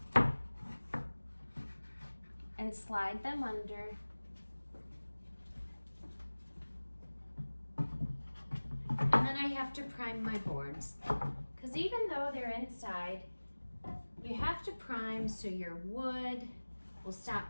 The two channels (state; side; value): inverted; both; correlation -1.00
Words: and slide them under. And then I have to prime my boards. Because even though they're inside, you have to prime so your wood will stop